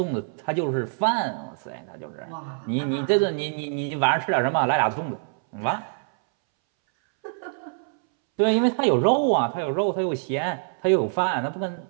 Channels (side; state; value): left; silent; 62 dB below the other